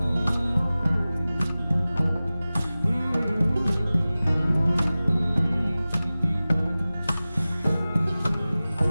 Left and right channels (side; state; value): both; inverted; correlation -0.97